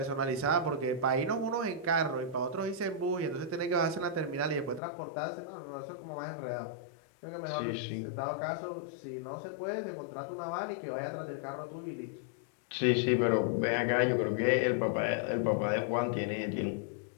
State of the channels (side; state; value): right; drops out; at 4.8 s